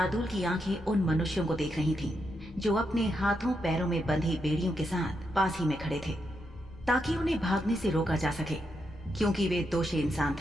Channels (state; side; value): noise; left; rumble, 18 dB below the sound